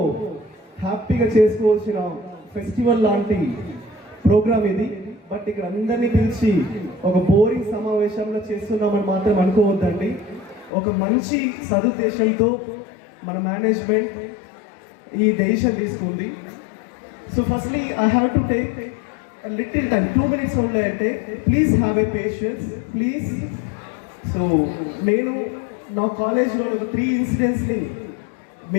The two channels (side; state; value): right; drops out; at 10.7 s